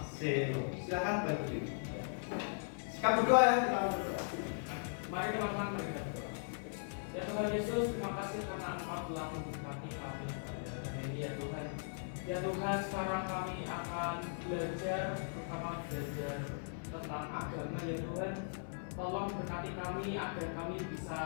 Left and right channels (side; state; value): right; silent; digital silence